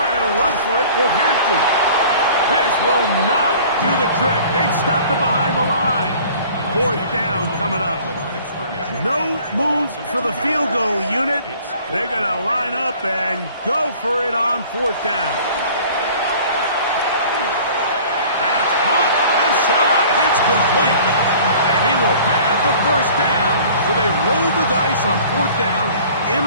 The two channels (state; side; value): inverted; both; correlation -0.48